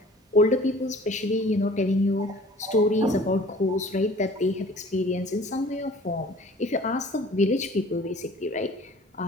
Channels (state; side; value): normal; both; correlation 0.49